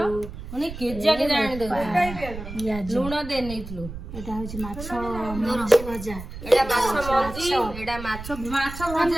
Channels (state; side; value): noise; right; rumble, 11 dB below the sound